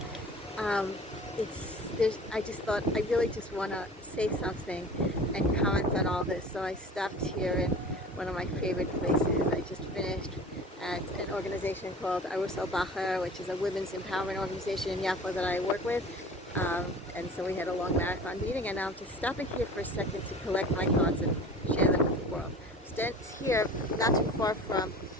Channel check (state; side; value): normal; both; correlation 0.41